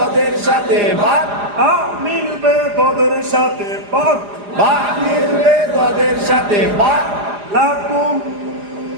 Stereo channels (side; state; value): left; late; 4.9 ms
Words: সাথে বা বা মিলবে তোদের সাথে বা বা মিলবে তোদের সাথে বা লাকুম